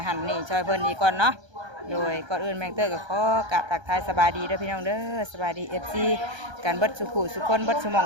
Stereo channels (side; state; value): left; late; 1.3 ms